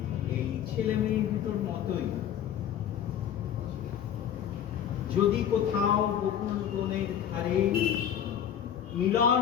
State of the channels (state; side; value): quieter; right; 9.4 dB